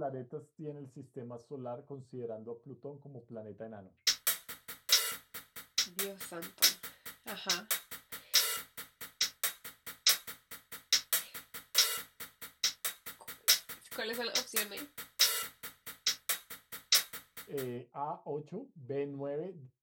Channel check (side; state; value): both; identical; correlation 1.00